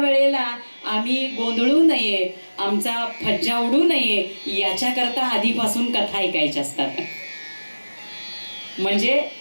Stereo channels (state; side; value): inverted; both; correlation -1.00